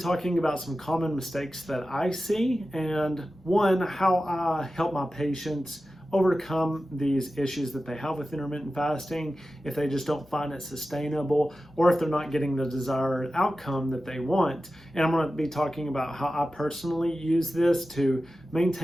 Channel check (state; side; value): normal; both; correlation 0.94